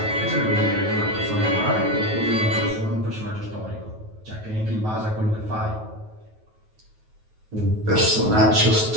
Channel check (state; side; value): late; left; 9.3 ms